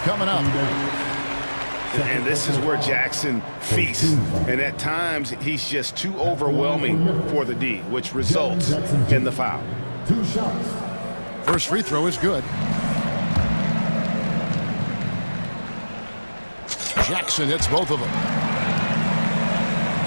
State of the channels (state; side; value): inverted; both; correlation -1.00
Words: up. And this is where Jackson feasts. And at times, he's just too overwhelming for the D, which results in the foul. 2 shots. First free throw is good. Jackson hits both of them.